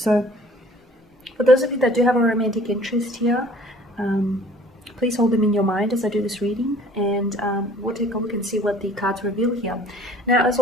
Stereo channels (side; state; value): both; normal; correlation 0.52